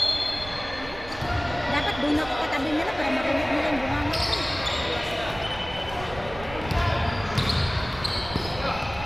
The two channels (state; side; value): noise; right; rumble, 14 dB below the sound